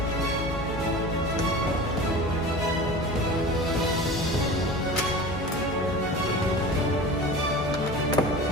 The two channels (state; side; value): normal; both; correlation 0.35